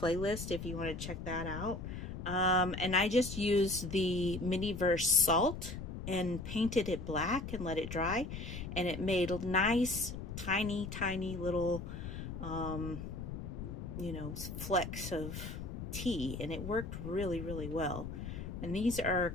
if you want to check that out. And I just used the Miniverse salt and painted it black and let it dry. And it made nice, tiny little, you know, flecks of tea. And it worked really well. And these are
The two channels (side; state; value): left; noise; rumble, 7 dB below the sound